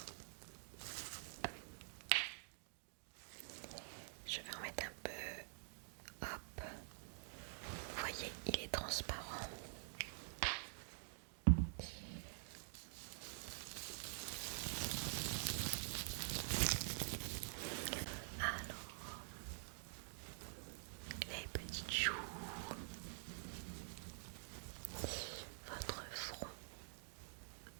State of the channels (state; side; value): silent; left; digital silence